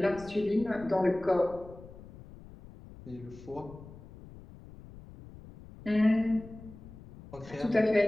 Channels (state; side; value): noise; left; rumble, 18 dB below the sound